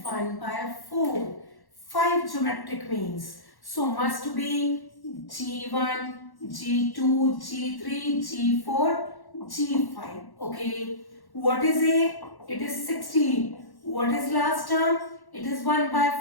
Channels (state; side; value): late; right; 1.1 ms